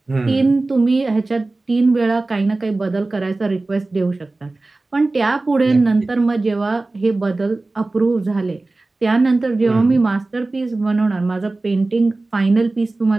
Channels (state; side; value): quieter; left; 3.2 dB